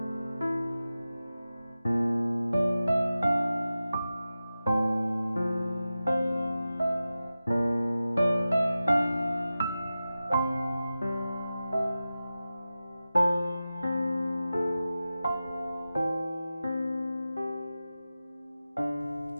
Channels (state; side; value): inverted; both; correlation -0.93